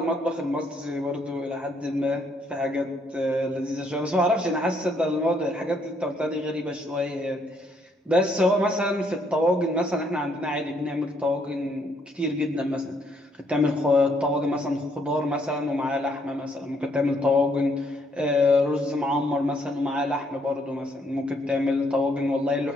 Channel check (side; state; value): both; normal; correlation 0.70